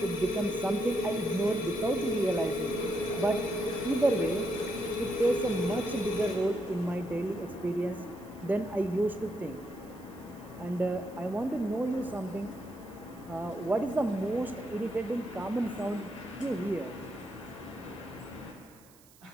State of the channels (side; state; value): right; noise; hiss, 26 dB below the sound